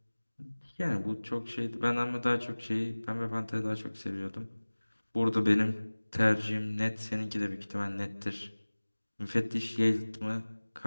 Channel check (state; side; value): inverted; both; correlation -1.00